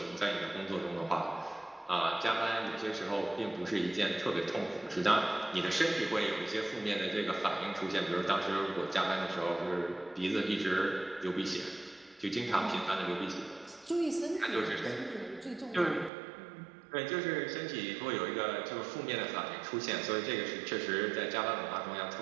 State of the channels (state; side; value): drops out; left; at 16.1 s